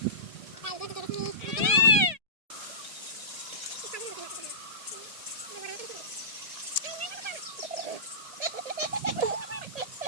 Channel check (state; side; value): late; left; 1.8 ms